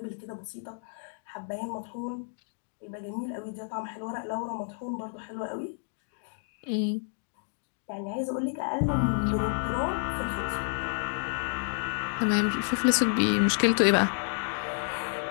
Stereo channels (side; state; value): right; silent; digital silence